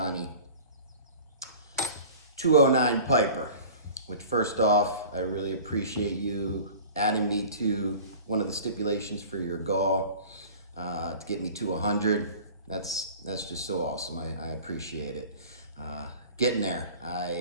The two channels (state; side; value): inverted; both; correlation -0.42